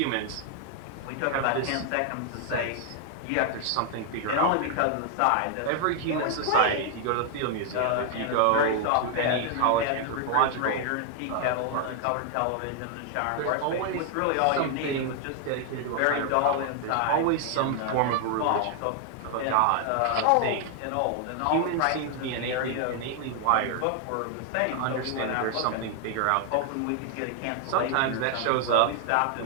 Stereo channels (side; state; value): both; different; correlation 0.00